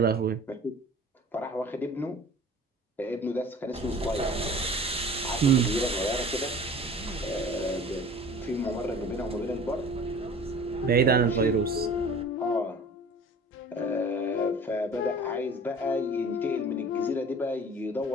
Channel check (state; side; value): normal; both; correlation 0.44